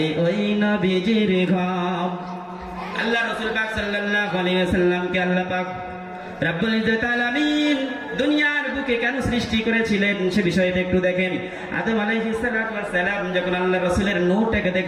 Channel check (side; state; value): both; identical; correlation 1.00